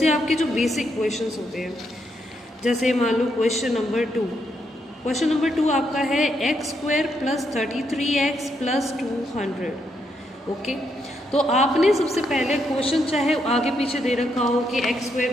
आपके जो बेसिक क्वेश्चंस होते हैं, जैसे मान लो क्वेश्चन नंबर 2। क्वेश्चन नंबर 2 आपका है x² + 33x + 200। ओके, तो आपने सबसे पहले क्वेश्चन चाहे आगे पीछे दे रखा हो कि x²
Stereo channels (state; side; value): normal; both; correlation 0.78